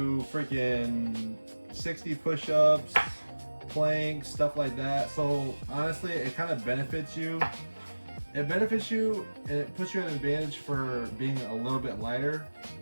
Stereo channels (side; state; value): both; inverted; correlation -1.00